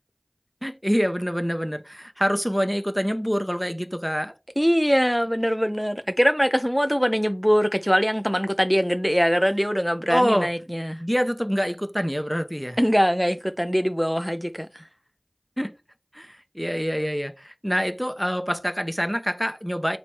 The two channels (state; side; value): identical; both; correlation 1.00